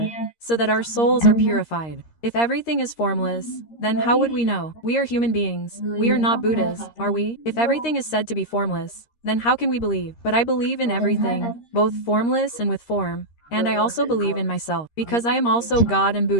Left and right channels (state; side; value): late; right; 13 ms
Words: so that our souls are purified. If everything is formless, then how would we know? We are human beings. We are not Buddhas, are we? If everything is said to be formless, then how can we believe? But I believe in everything, both formless and with form. And I also believe in myself, because I am also God and